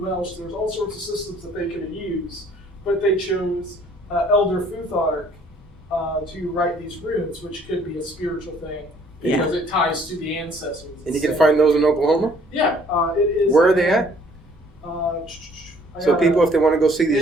there's all sorts of systems that they could have used, but they chose Elder Futhark to write these runes, which could be a spiritual thing Yeah. because it ties to the ancestors. And you can find those in Oklahoma? Yeah, it is. Where are they at? So people, if they want to go see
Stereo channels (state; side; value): normal; both; correlation 0.59